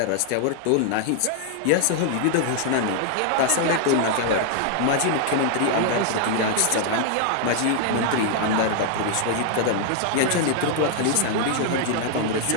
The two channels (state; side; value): different; both; correlation 0.00